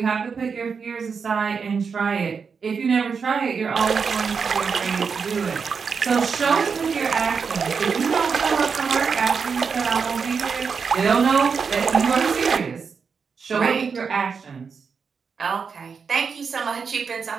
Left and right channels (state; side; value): quieter; left; 5.7 dB